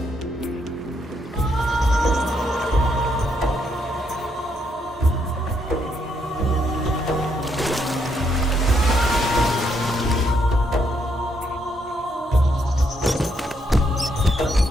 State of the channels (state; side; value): normal; both; correlation 0.75